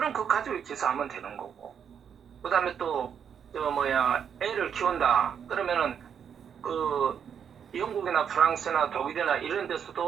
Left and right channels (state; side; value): quieter; left; 7.8 dB